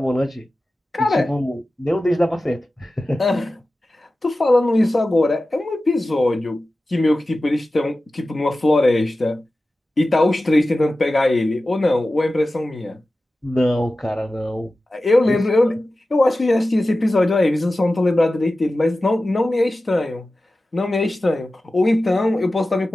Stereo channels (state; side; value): normal; both; correlation 0.95